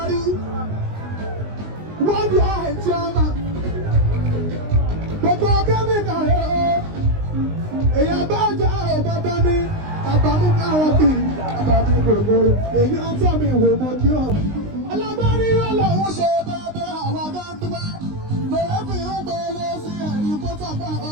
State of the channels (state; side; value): late; left; 19 ms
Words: wọ́n di àìtí ọmọ gbogbo kẹ́míkà èyàn bá jà ọmọ bá mi àbámú káwọn bì àbámí gbogbo èyí ń tọ́ mi wò mọ́ kí ọ̀. Alágbárí yóò lọ́wọ́ ṣe bẹ́ẹ̀ àwọn agáńdúgbà lọ́wọ́ fi ń gbélé sí ẹ̀rí kó tọ́gbà